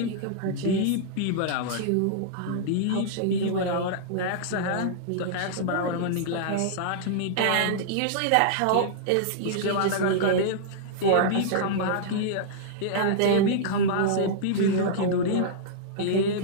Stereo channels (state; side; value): different; both; correlation -0.02